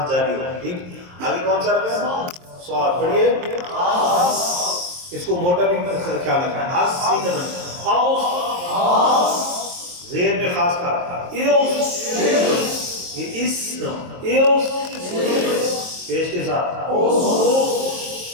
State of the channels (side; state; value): left; late; 23 ms